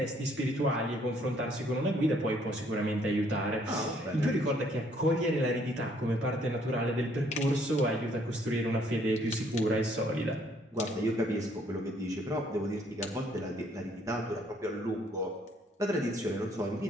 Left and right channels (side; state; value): both; normal; correlation 0.65